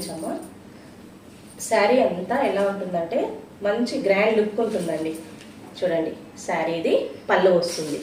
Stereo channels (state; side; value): identical; both; correlation 1.00